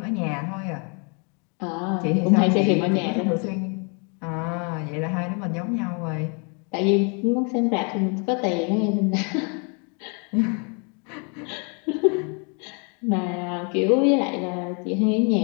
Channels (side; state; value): right; quieter; 36.1 dB